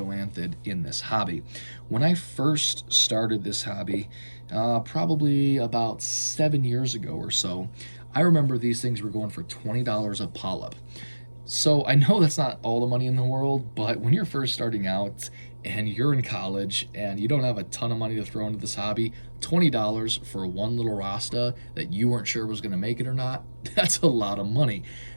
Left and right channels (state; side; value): inverted; both; correlation -1.00